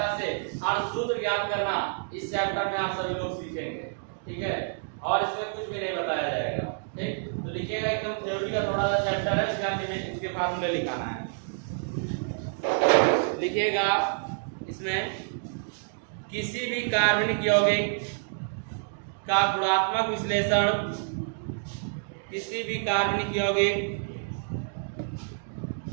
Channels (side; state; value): left; silent; digital silence